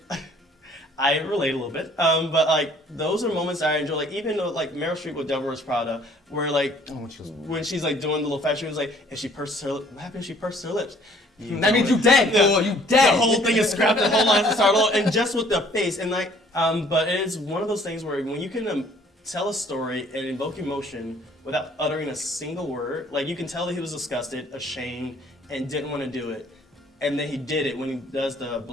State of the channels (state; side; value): normal; both; correlation 0.58